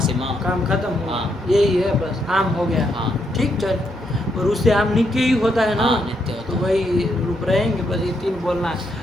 काम खत्म हुआ। हाँ। यही है बस, आम हो गया। हाँ। ठीक चल। और उससे आम नित्य ही होता है ना। हाँ, नित्य होता तो है। वही रूप रहेंगे बस, ये तीन बोलना है।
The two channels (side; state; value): right; noise; hum, 21 dB below the sound